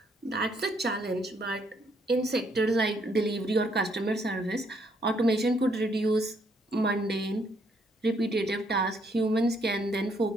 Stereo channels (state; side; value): normal; both; correlation 0.70